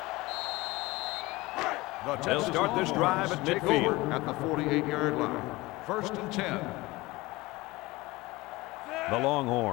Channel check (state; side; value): quieter; right; 20.9 dB